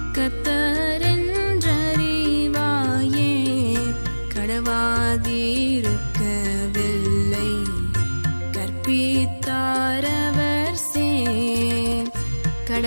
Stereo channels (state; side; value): inverted; both; correlation -1.00